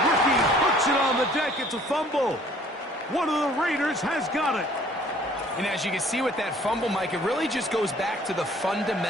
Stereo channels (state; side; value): normal; both; correlation 0.56